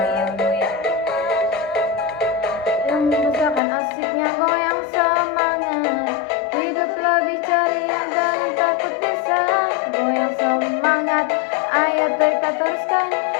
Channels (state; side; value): drops out; right; at 3.6 s